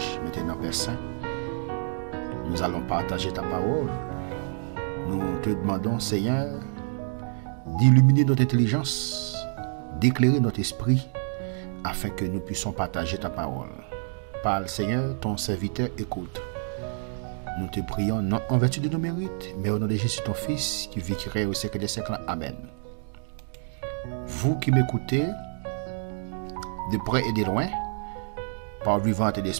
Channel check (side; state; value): left; silent; 60 dB below the other